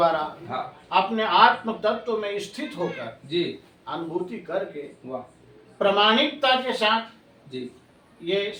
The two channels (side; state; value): both; identical; correlation 1.00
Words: हाँ अपने आत्म तत्व में स्थित होकर जी अनुभूति करके वाह प्रामाणिकता के साथ जी ये